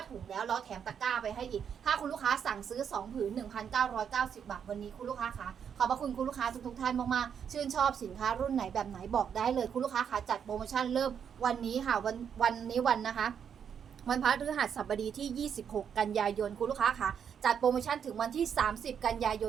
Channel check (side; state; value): left; quieter; 7.8 dB